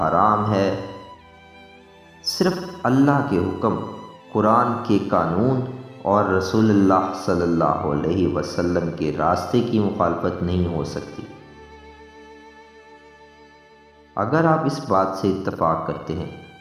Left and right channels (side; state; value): both; identical; correlation 1.00